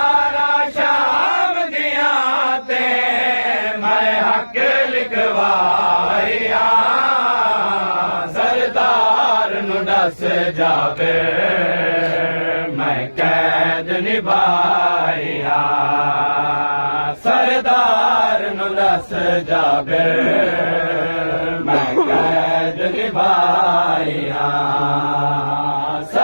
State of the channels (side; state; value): both; inverted; correlation -1.00